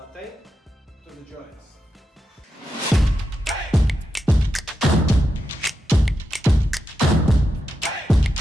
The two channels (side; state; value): both; normal; correlation 0.87